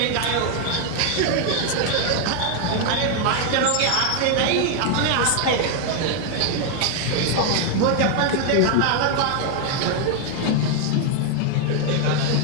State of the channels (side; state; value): both; different; correlation 0.00